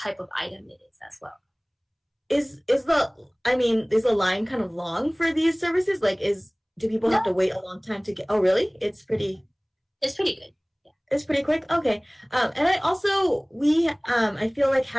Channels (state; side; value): identical; both; correlation 1.00